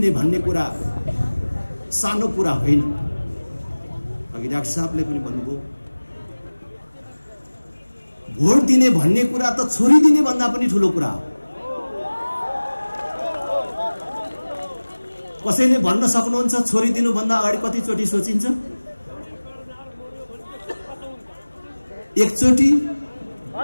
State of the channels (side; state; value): both; inverted; correlation -1.00